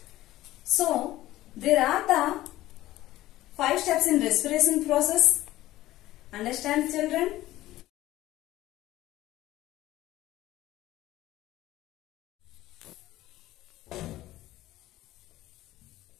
So, there are the 5 steps in respiration process. Understand, children?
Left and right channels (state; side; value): quieter; right; 15.7 dB